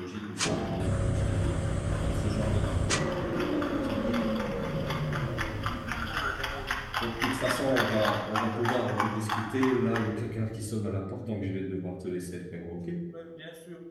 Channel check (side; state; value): both; identical; correlation 1.00